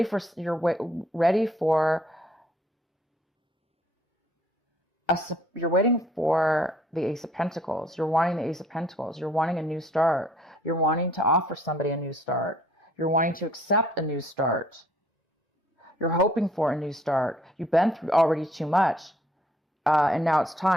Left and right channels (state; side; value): normal; both; correlation 0.61